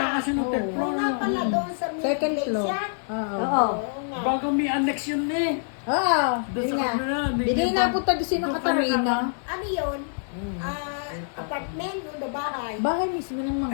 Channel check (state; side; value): silent; right; digital silence